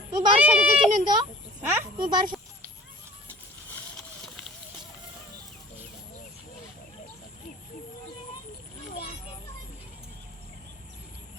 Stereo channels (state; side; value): normal; both; correlation 0.46